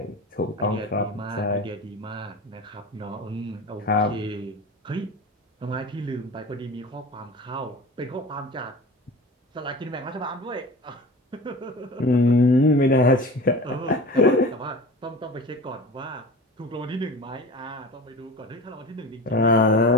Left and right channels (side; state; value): both; normal; correlation 0.35